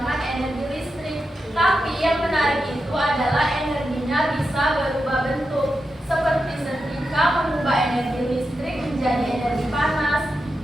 energi listrik. Tapi yang menarik itu adalah energinya bisa berubah bentuk. Seperti setrika mengubah energi listrik menjadi energi panas,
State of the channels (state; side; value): normal; both; correlation 0.88